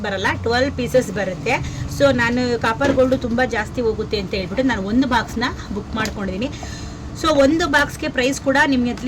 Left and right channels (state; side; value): identical; both; correlation 1.00